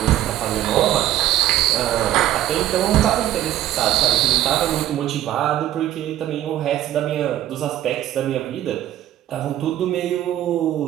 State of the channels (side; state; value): left; quieter; 13.0 dB